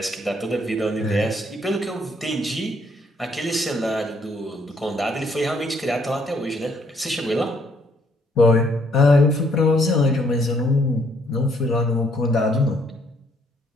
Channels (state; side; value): normal; both; correlation 0.67